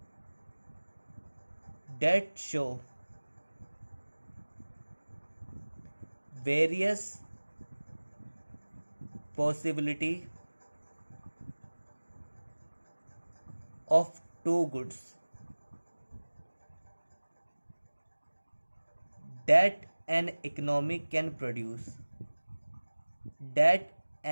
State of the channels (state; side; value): inverted; both; correlation -1.00